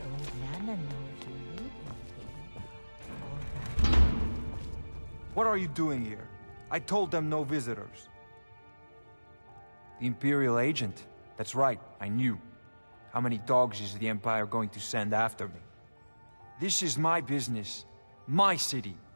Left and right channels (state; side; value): inverted; both; correlation -1.00